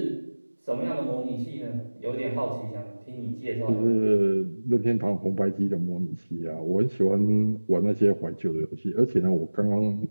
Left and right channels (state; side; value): inverted; both; correlation -1.00